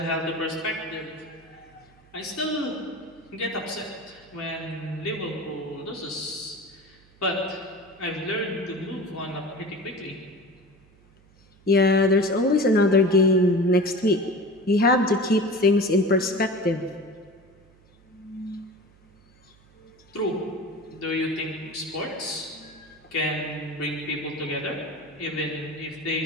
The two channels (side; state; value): right; noise; hum, 29 dB below the sound